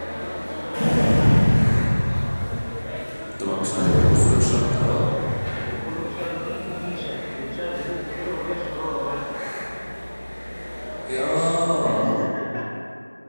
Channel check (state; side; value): inverted; both; correlation -1.00